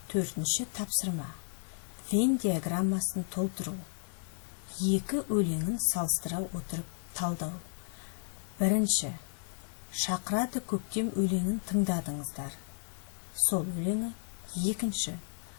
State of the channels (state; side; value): silent; right; digital silence